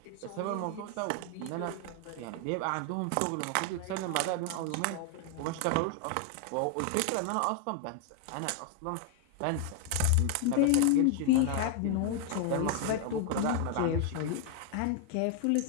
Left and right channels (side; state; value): both; different; correlation 0.00